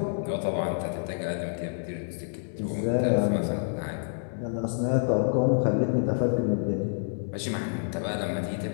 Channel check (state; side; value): silent; right; digital silence